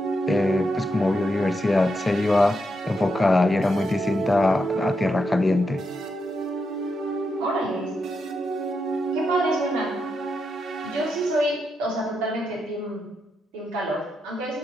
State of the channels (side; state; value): both; normal; correlation 0.84